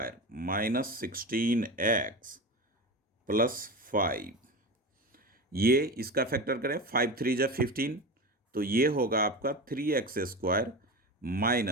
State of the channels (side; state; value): both; normal; correlation 0.25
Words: -16x +5। ये इसका फैक्टर करें, 5 3 जा 15, तो ये होगा आपका 3x²